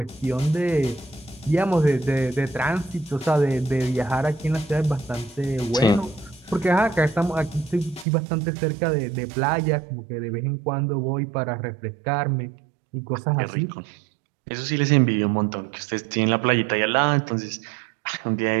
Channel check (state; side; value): drops out; left; at 8.1 s